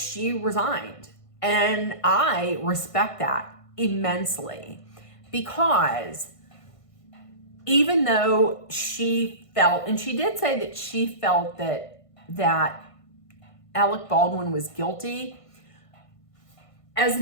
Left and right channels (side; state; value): right; late; 1.5 ms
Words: resigned. And I respect that immensely, because even though she felt, and she did say that she felt that Alec Baldwin was guilty, as